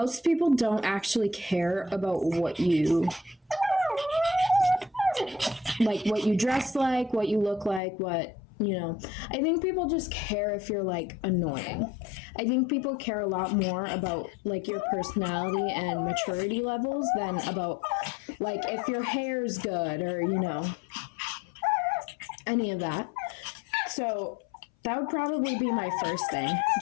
people don't actually care about what you dress like, what you look like, what, you know. I think people just care if you're, like, annoying. I think people care a lot more about, like, your personality and maturity levels than about, like, if your hair's good or, you know, any of that. So that would probably be my first thing.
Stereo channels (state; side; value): drops out; right; at 7.8 s